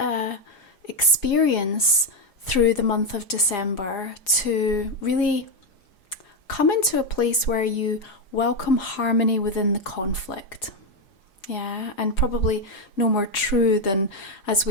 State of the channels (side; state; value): right; late; 4.9 ms